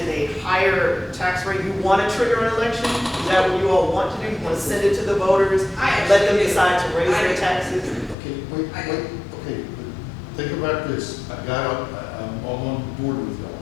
a higher tax rate? You want to trigger an election? Is that what you all want to do? You want to send it to the voters, and let them decide to raise their taxes? Okay, wait, okay, but think about this. I'm all on board with y'all,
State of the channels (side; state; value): right; drops out; at 8.2 s